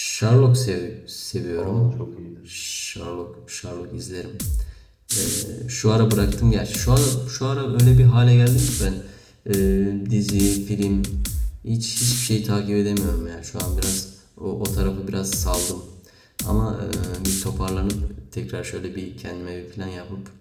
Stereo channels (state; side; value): identical; both; correlation 1.00